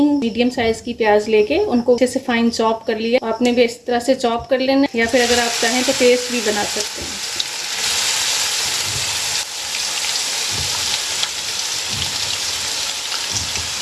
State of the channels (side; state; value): both; identical; correlation 1.00